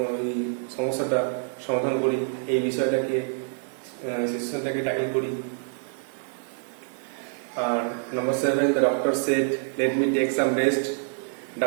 সমস্যাটা সমাধান করি, এই বিষয়টাকে সিচুয়েশনটাকে ট্যাকল করি। আর number 7, the doctor said, let me take some rest.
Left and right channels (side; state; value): left; silent; digital silence